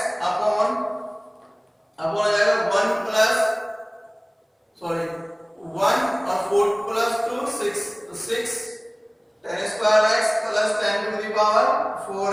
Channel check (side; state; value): both; identical; correlation 1.00